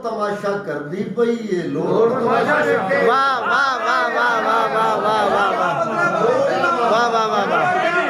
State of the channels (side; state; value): both; identical; correlation 1.00